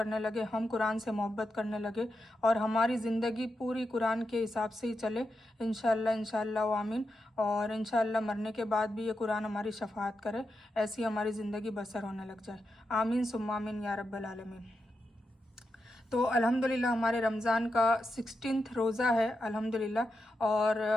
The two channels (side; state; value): both; normal; correlation 0.87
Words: लगे, हम कुरान से मोहब्बत करने लगे और हमारी ज़िंदगी पूरी कुरान के हिसाब से ही चले इंशाअल्लाह आमीन। और इंशाअल्लाह मरने के बाद भी ये कुरान हमारी शफाअत करे, ऐसी हमारी ज़िंदगी बसर होने लग जाए। आमीन सुम्मा आमीन या रब्बल आलमीन। तो अल्हम्दुलिल्लाह हमारे रमज़ान का 16वां रोज़ा है अल्हम्दुलिल्लाह और